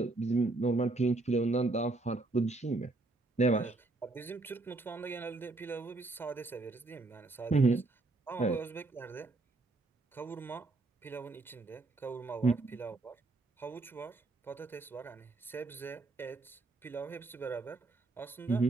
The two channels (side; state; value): left; quieter; 3.3 dB